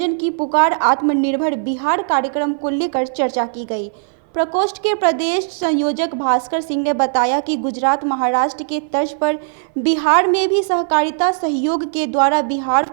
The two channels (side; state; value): left; silent; 59 dB below the other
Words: की पुकार आत्मनिर्भर बिहार कार्यक्रम को लेकर चर्चा की गई। प्रकोष्ठ के प्रदेश संयोजक भास्कर सिंह ने बताया कि गुजरात महाराष्ट्र के तर्ज पर बिहार में भी सहकारिता सहयोग के द्वारा बिहार